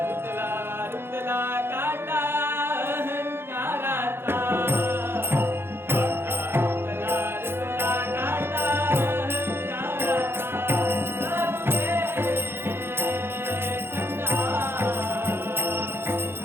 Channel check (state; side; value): late; left; 0.11 ms